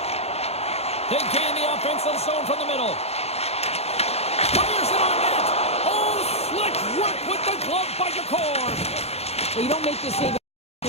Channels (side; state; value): right; late; 0.30 ms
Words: They gain the offensive zone from the middle. Fires it on net! Oh, slick work with the glove by Jakorn! Well, you don't make this save if